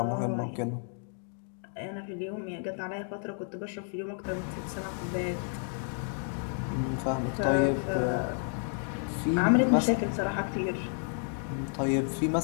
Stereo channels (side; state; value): right; silent; 55 dB below the other